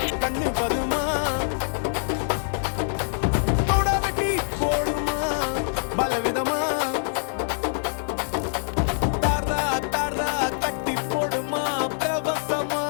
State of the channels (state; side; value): silent; right; digital silence